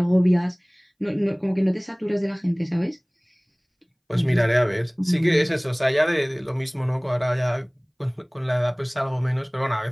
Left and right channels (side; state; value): both; identical; correlation 1.00